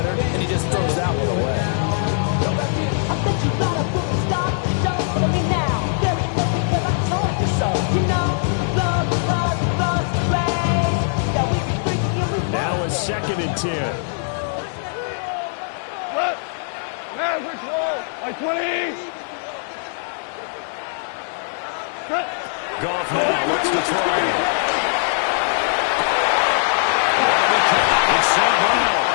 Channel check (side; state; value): right; silent; digital silence